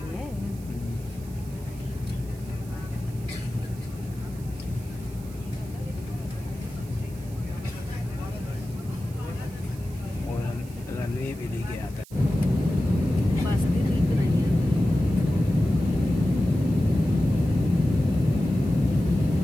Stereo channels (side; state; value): right; noise; hiss, 22 dB below the sound